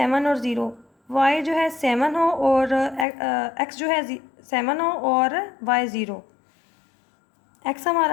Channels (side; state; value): right; drops out; at 3.1 s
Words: और 0। वाई जो है 7 हो और एक्स जो है 7 हो और वाई 0। एक्स